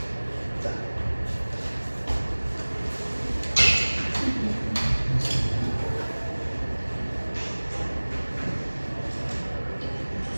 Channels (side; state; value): both; inverted; correlation -1.00